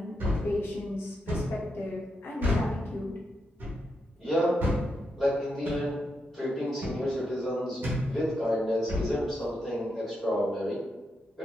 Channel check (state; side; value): normal; both; correlation 0.83